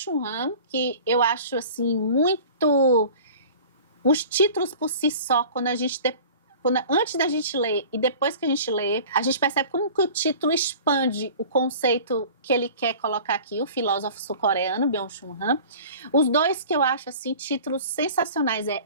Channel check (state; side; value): inverted; both; correlation -0.42